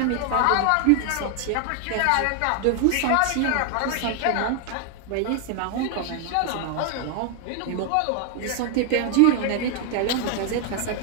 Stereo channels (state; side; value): different; both; correlation 0.00